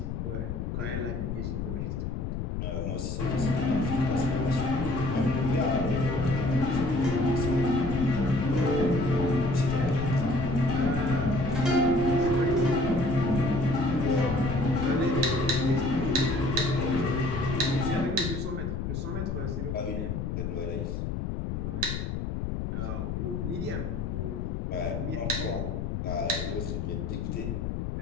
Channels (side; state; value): left; noise; rumble, 3 dB below the sound